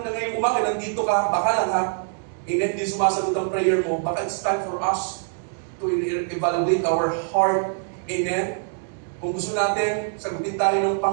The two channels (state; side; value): silent; left; 63 dB below the other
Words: na ngayong umaga, nandito ka, baka lang ha, amen, hindi sumasagot ang prayer mo, baka it's time for us to evaluate our heart. Amen? Kung gusto natin, sagutin tayo ng